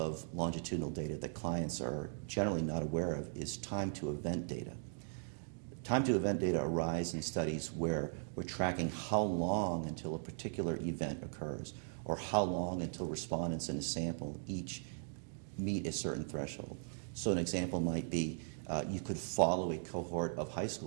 longitudinal data that clients are generally not aware of is time-to-event data. Time-to-event data arise in studies where we're tracking how long until a particular event occurs, or how long until respondents in a sample each meet a certain threshold. So an example might be you could follow a cohort of high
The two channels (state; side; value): silent; left; digital silence